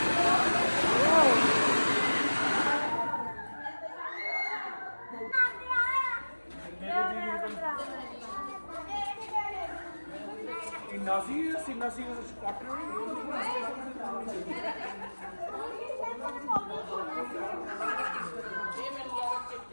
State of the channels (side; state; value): both; inverted; correlation -1.00